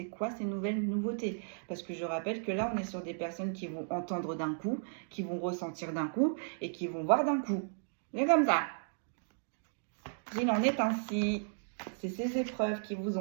quoi ces nouvelles nouveautés. Parce que je rappelle que là, on est sur des personnes qui vont entendre d'un coup, qui vont ressentir d'un coup et qui vont voir d'un coup. C'est comme ça. Il en est ainsi. C'est ces épreuves qui vous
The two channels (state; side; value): silent; left; digital silence